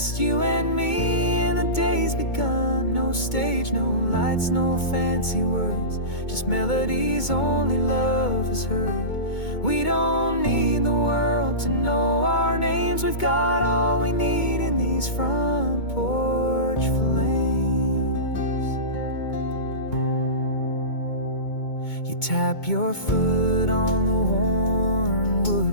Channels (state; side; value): late; right; 2.2 ms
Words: you and me, and the day's begun. No stage, no lights, no fancy words, just melodies only love has heard. We don't need the world to know our names, we've got all we need in these front porch flames. You tap your foot on the worn